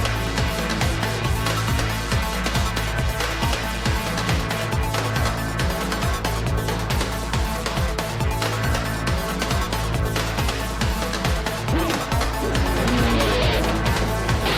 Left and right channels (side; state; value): both; identical; correlation 1.00